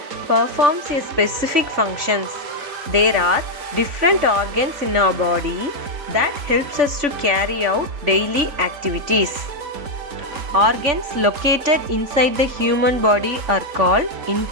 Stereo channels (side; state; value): left; late; 3.5 ms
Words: performs a specific functions. There are different organs in our body that helps us to carry out daily activities. Organs located inside the human body are called